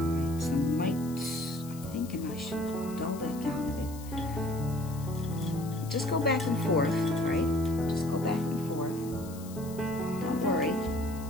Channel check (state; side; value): noise; left; hiss, 18 dB below the sound